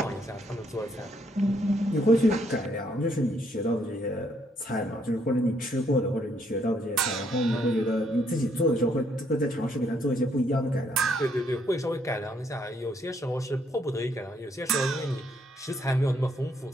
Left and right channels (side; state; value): both; normal; correlation 0.71